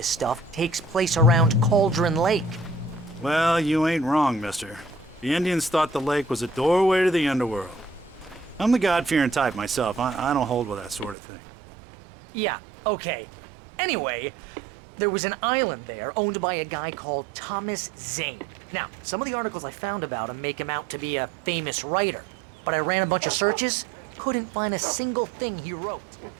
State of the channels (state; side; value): drops out; left; at 11.2 s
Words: stuff takes place around Cauldron Lake. Well, you ain't wrong, mister. The Indians thought the lake was a doorway to the underworld. I'm the God-fearing type myself. I don't hold with that sort of thing. Yeah, okay. Anyway, there was an island there owned by a guy called Thomas Zane. Now, some of the articles I found about him make him out to be a famous writer, but I ran a bunch of searches, couldn't find a single thing he wrote.